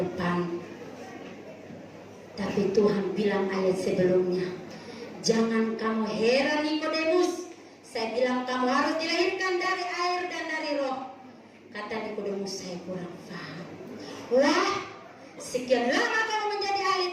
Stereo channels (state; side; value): identical; both; correlation 1.00